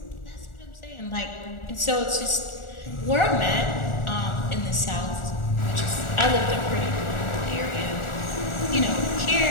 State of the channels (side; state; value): right; late; 1.4 ms